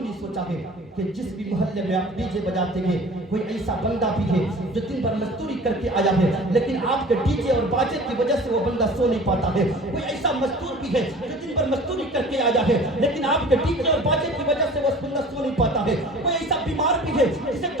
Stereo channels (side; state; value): both; normal; correlation 0.43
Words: سوچا ہے کہ جس بھی محلے میں آپ ڈی جے بجاتے ہیں کوئی ایسا بندہ بھی ہے جو دن بھر مزدوری کر کے آیا ہے لیکن آپ کے ڈی جے اور باجے کی وجہ سے وہ بندہ سو نہیں پاتا ہے، کوئی ایسا مزدور بھی ہے جو دن بھر مزدوری کر کے آیا ہے لیکن آپ کے ڈی جے اور باجے کی وجہ سے وہ بندہ سو نہیں پاتا ہے، کوئی ایسا بیمار بھی ہے جسے